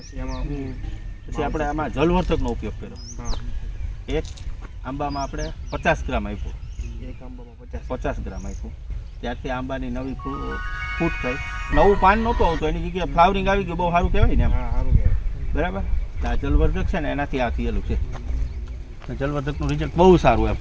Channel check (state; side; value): identical; both; correlation 1.00